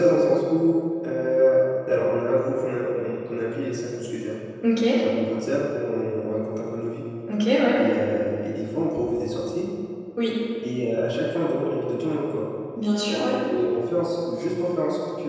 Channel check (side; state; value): both; identical; correlation 1.00